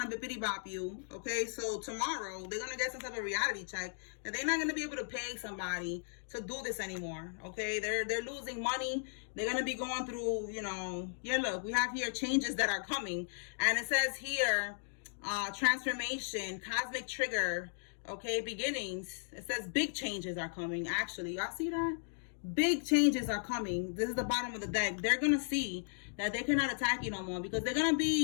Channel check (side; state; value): right; silent; digital silence